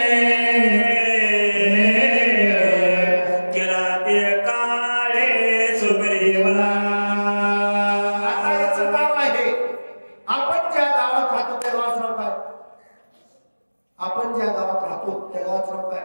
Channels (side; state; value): both; inverted; correlation -1.00